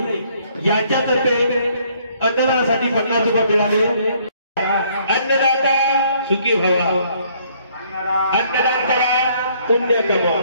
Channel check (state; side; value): inverted; both; correlation -0.64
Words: याच्यातर्फे अन्नदानासाठी 50 रुपये मिळाले अन्नदाता सुखी भवा अन्नदान करा पुण्य कमवा